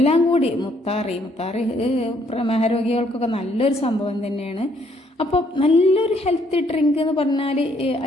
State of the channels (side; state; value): both; normal; correlation 0.68